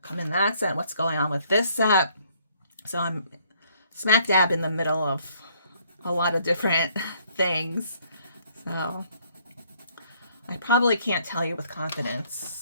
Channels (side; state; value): both; inverted; correlation -0.65